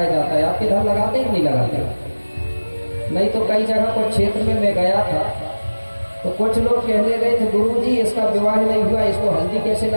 जाता है। आप इधर लगाते कि नहीं लगाते? नहीं तो कई जगह पर क्षेत्र में मैं गया था तो कुछ लोग कहने गए थे गुरुजी इसका विवाह नहीं हुआ, इसको हल्दी कैसे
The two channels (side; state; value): both; inverted; correlation -1.00